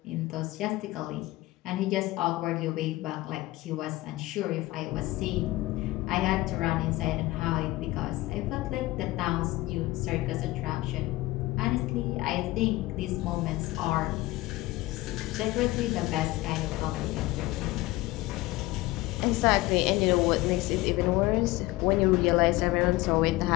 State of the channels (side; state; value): right; quieter; 18.9 dB